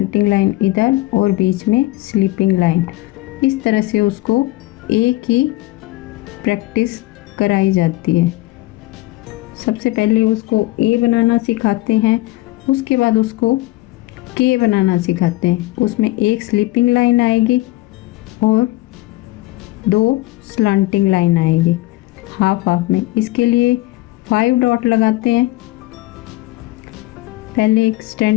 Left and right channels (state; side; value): quieter; right; 18.6 dB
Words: लाइन इधर और बीच में स्लीपिंग लाइन। इस तरह से उसको ए की प्रैक्टिस कराई जाती है। सबसे पहले उसको ए बनाना सिखाते हैं, उसके बाद उसको के बनाना सिखाते हैं। उसमें एक स्लीपिंग लाइन आएगी और 2 स्लैंटिंग लाइन आएगी हाफ हाफ में। इसके लिए 5 डॉट लगाते हैं। पहले एक